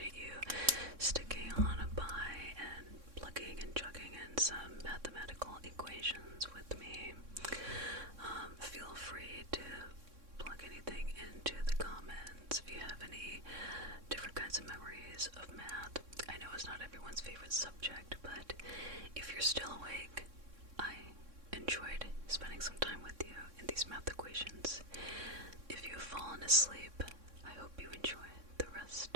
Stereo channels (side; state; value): left; late; 3.6 ms